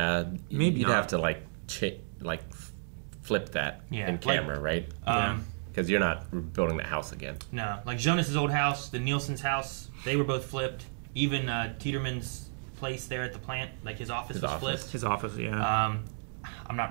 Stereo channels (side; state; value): left; silent; digital silence